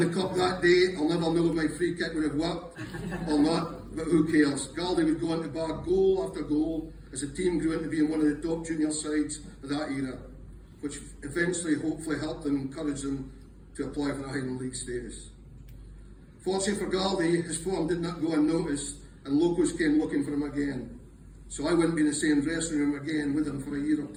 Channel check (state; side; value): identical; both; correlation 1.00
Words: cup that day. I'll never know if my free kick would have worked or not, but who cares? Gauldy would go on to bar goal after goal as the team grew into being one of the top junior sides of that era, which eventually, hopefully, helped them, encourage them to apply for the Highland League status. Fortunately for Gauldy, his form did not go unnoticed, and locals came looking for him again. So I wouldn't be in the same dressing room again with him for a year or